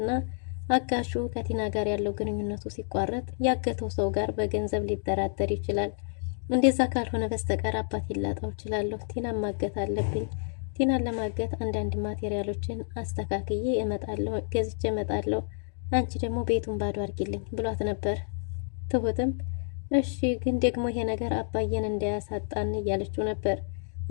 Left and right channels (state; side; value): silent; right; digital silence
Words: አጋሹ ከቲና ጋር ያለው ግንኙነቱ ሲቋረጥ ያገተው ሰው ጋር በገንዘብ ሊደራደር ይችላል እንደዛ ካልሆነ በስተቀር አባት ይላጣው ይችላል ቲናን ማገት አለብኝ ቲናን ለማገት አንዳንድ ማቴሪያሎችን አስተካክዬ እመጣለሁ ገዝቼ እመጣለሁ አንቺ ደግሞ ቤቱን ባዶ አድርጊልኝ ብሏት ነበር ትሁትም እሺ ግን ደግሞ ይሄ ነገር አባዬን እንዳያሳጣን እያለችው ነበር